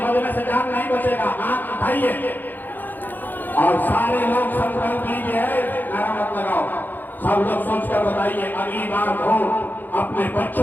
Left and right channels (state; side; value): late; right; 0.087 ms